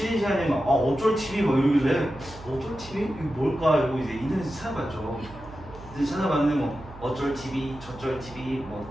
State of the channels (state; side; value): noise; right; hum, 17 dB below the sound